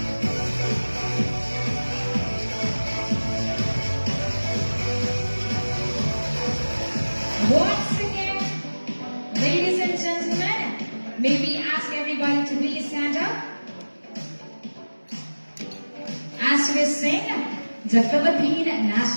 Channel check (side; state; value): both; inverted; correlation -1.00